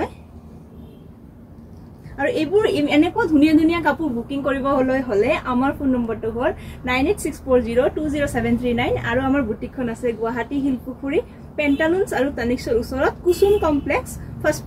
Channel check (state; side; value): identical; both; correlation 1.00